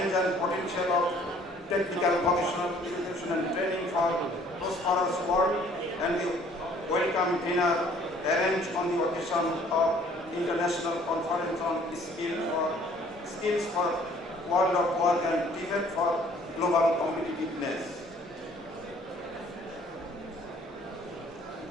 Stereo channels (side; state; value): both; normal; correlation 0.57